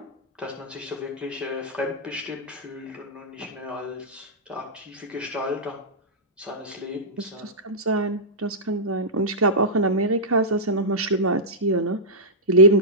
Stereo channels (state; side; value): normal; both; correlation -0.12